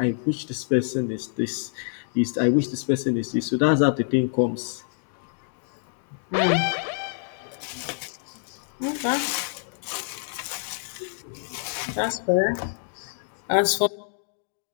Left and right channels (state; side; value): silent; right; digital silence